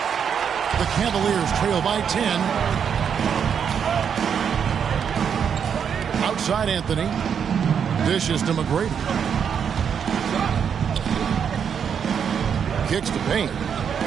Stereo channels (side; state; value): left; quieter; 7.5 dB